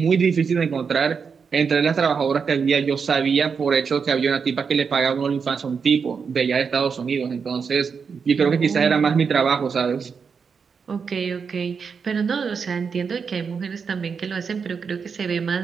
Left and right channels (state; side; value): quieter; left; 5.9 dB